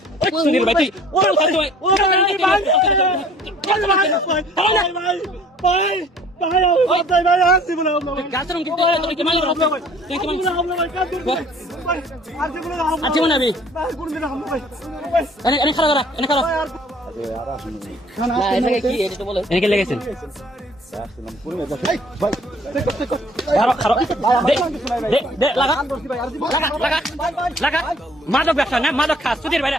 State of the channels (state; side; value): normal; both; correlation 0.54